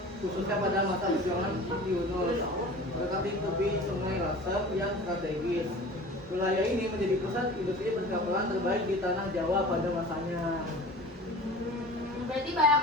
khususnya pada masa perjuangan Yunus. Mendekati tepi Sungai Lasem yang strategis. Wilayah ini menjadi pusat industri perkapalan terbaik di tanah Jawa pada masanya. Berarti banyak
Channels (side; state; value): both; normal; correlation 0.40